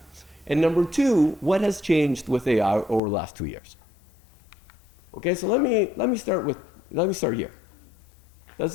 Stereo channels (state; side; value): drops out; right; at 3.0 s